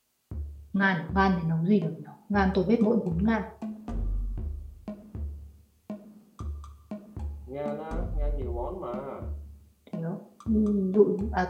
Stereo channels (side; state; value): both; identical; correlation 1.00